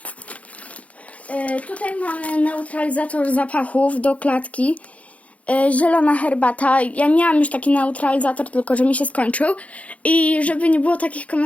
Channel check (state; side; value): late; right; 0.066 ms